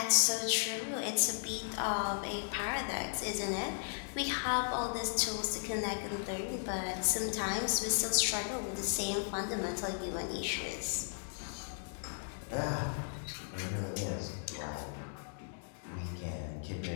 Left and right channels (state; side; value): silent; right; digital silence